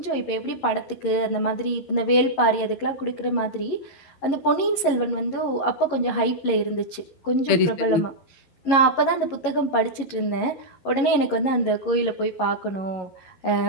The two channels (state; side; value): late; right; 11 ms